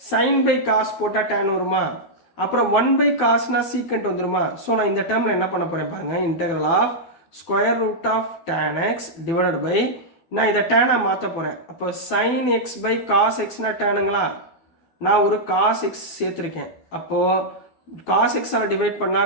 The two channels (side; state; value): right; late; 12 ms